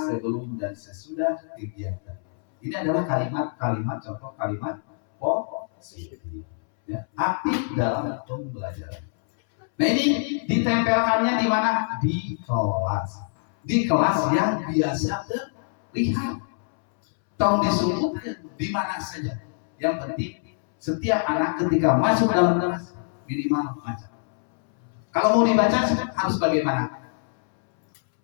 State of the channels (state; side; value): silent; right; 62 dB below the other